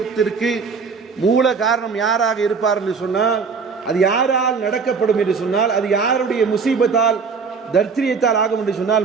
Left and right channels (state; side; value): quieter; left; 5.3 dB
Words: மூல காரணம் யாராக இருப்பார் என்று சொன்னால், அது யாரால் நடக்கப்படும் என்று சொன்னால், அது யாருடைய முசீபத்தால் தர்த்திரியத்தால் ஆகும் என்று சொன்னால்,